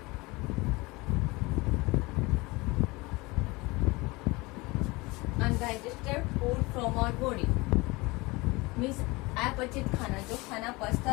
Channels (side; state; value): right; quieter; 23.7 dB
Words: food from our body, means अपचित खाना, जो खाना